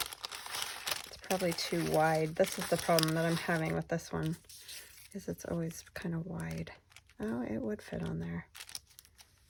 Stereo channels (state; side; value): identical; both; correlation 1.00